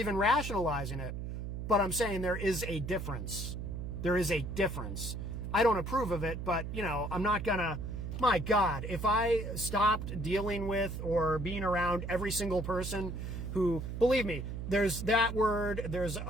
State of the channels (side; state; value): right; noise; hum, 5 dB below the sound